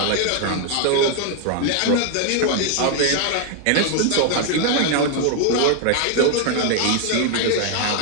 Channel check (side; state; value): both; different; correlation 0.00